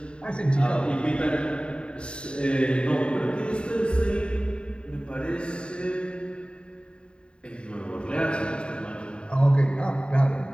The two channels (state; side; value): late; right; 0.053 ms